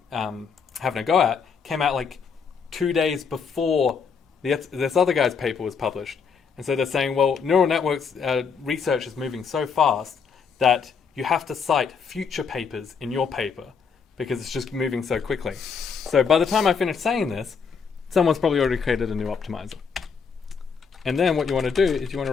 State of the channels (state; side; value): quieter; right; 6.0 dB